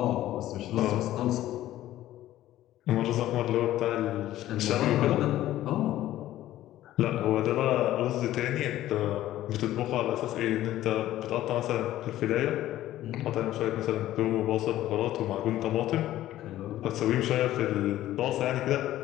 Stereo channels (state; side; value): quieter; right; 14.0 dB